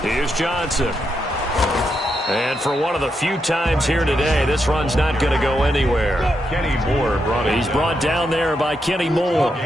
Here's Johnson. And for one of the few times here today, this run's not going to go anywhere. Kenny Moore He's brought down there by Kenny Moore.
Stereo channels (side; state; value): both; normal; correlation 0.83